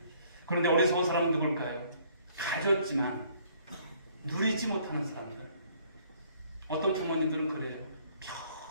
그런데 어리석은 사람은 누굴까요? 가졌지만 누리지 못하는 사람들. 어떤 부모님들은 그래요.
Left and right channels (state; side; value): inverted; both; correlation -0.62